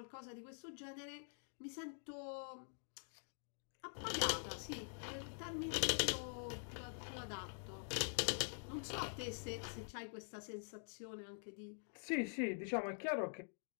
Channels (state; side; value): silent; right; digital silence